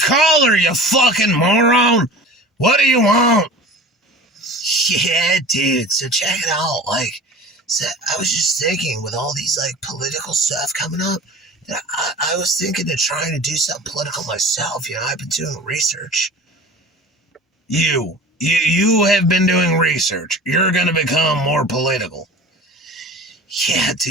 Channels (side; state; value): both; normal; correlation 0.39